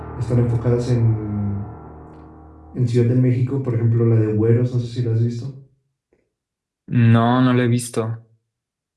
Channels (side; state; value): both; identical; correlation 1.00